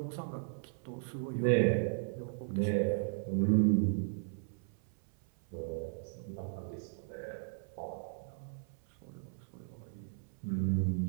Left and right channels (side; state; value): left; silent; 54 dB below the other